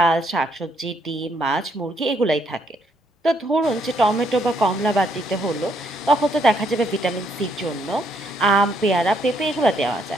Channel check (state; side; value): normal; both; correlation 0.72